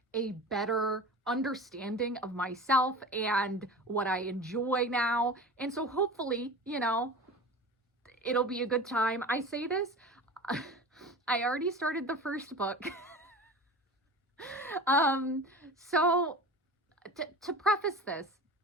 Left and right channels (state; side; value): normal; both; correlation 0.35